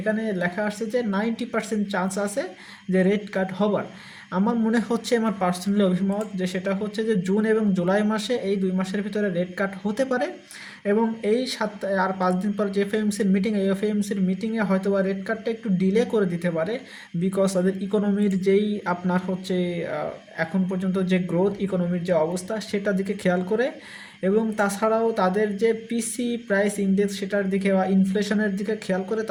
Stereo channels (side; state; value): both; identical; correlation 1.00